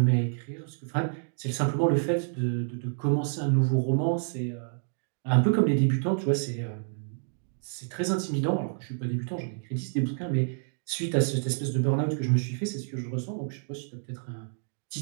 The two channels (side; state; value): left; silent; digital silence